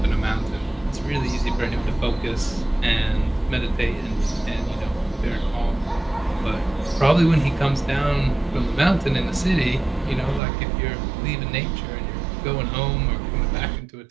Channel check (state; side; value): drops out; left; at 10.4 s